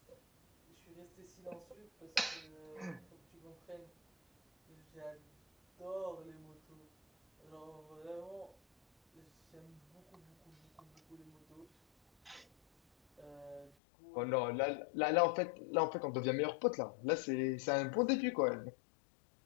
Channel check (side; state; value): right; drops out; at 13.7 s